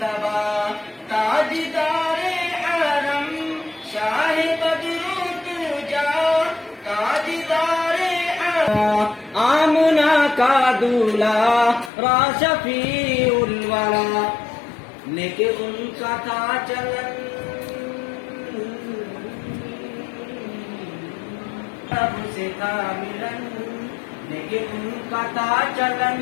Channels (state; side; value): drops out; right; at 11.9 s